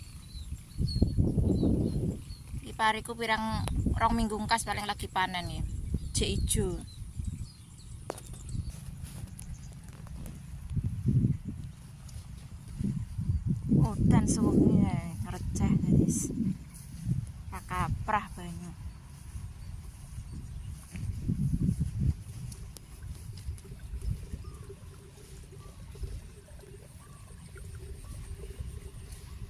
Iki pariku pirang rong minggu ngkas paling lagi panen ya. Jek ijo. Udan suwengi receh guys. Kaprah banyu.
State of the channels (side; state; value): both; identical; correlation 1.00